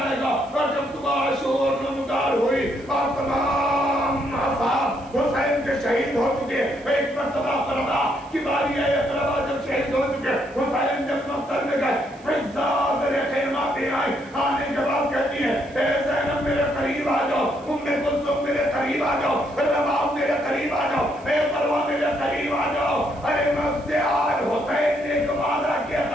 گا. اور جب صبح شور نمودار ہوئی اور تمام اصحاب حسین کے شہید ہو چکے, ایک مرتبہ فرما کی باری ہے, اقربا جب شہید ہو چکے, حسین جب مقتل میں گئے, فضا میرے خیمہ پہ آئی. آنے کے بعد کہتی ہے اے زینب میرے قریب آ جاؤ, ام کلثوم میرے قریب آ جاؤ, رباب میرے قریب آ جاؤ, اے مروہ میرے قریب آ جاؤ. ارے میں اس سے آج حسین نے ایک وعدہ کیا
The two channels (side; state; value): right; noise; hiss, 27 dB below the sound